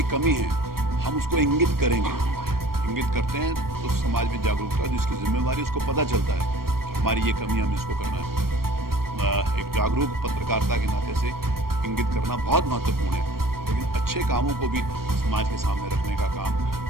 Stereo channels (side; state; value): left; late; 0.94 ms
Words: कमी है हम उसको इंगित करेंगे, इंगित करते हैं तो समाज में जागरूकता, जिसकी जिम्मेवारी उसको पता चलता है कि हमारी ये कमी, हमें इसको करना है। एक जागरूक पत्रकारिता के नाते से इंगित करना बहुत महत्वपूर्ण है, लेकिन अच्छे कामों को भी समाज के सामने रखने का काम